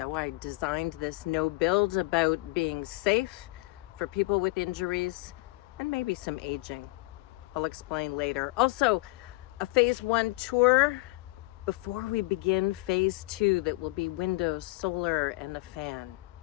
I designed this no build about being safe for people with injuries and maybe some aging. I'll explain later. Also, a phase 1 tour before we begin phase 2 that will be windows, solar, and a fan.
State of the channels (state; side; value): quieter; right; 22.0 dB